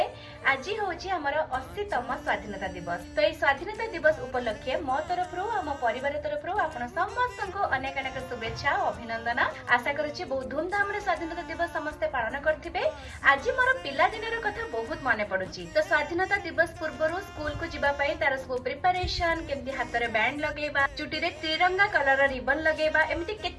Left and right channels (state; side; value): identical; both; correlation 1.00